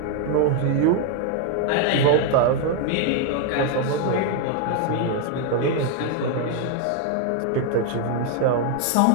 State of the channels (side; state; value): both; different; correlation 0.00